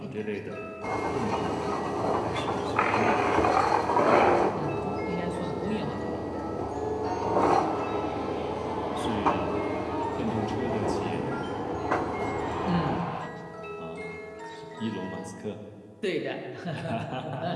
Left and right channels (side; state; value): both; identical; correlation 1.00